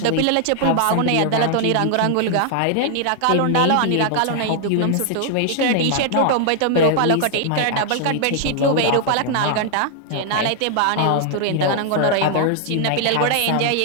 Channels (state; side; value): different; both; correlation 0.00